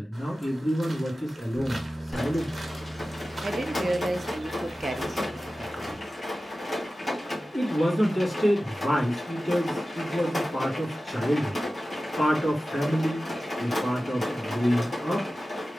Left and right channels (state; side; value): normal; both; correlation 0.95